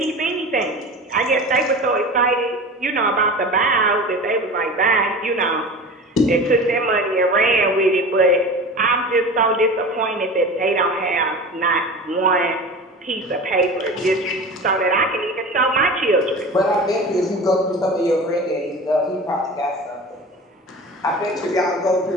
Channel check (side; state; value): both; normal; correlation 0.34